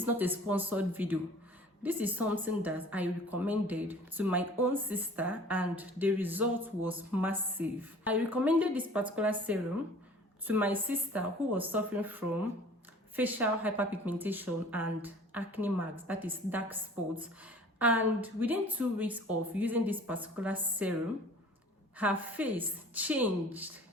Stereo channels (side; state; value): both; normal; correlation 0.47